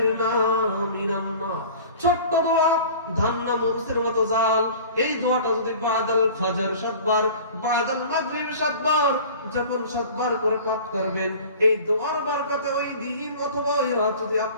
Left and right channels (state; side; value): inverted; both; correlation -0.43